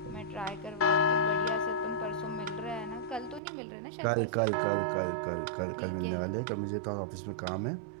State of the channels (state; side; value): drops out; left; at 3.4 s